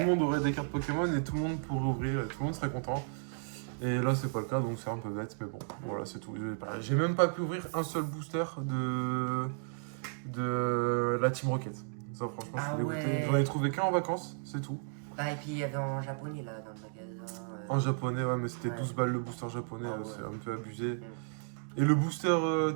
le monde aurait des cartes Pokémon et tout le monde pourrait ouvrir et tout le monde serait content. Et là, c'est pas le cas, donc c'est un peu bête, mais bon, voilà, c'est tout. J'ai même pas pu ouvrir un seul booster de la Team Rocket. Ça, franchement, Ah je suis dégoûté. ouais. J'en ai trouvé qu'un en vacances, c'est tout. Bah, et puis il y avait en japonais là, dans le magasin. En japonais, ouais, mais c'était Ouais. 12 balles le booster japonais, Ah ouais. c'est un peu abusé. Et le booster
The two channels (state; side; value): silent; left; digital silence